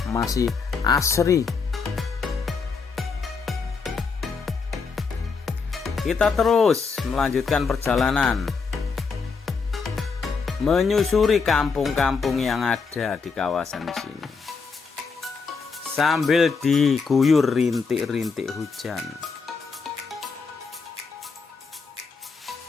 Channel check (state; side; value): quieter; right; 5.0 dB